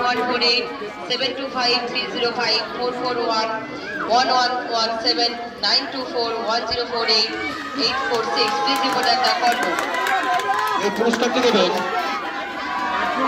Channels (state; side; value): identical; both; correlation 1.00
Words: 725, 305, 441, 1117, 924, 1048, 846. Please report at the call room. এই পুরস্কারটি দেবেন